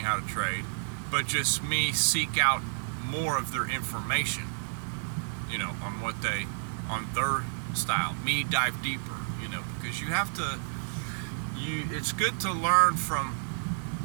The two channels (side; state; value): left; silent; digital silence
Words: how to trade, but just me seek out more of their information, you know, on their style. Me dive deeper, you know, because you have to, it's good to learn from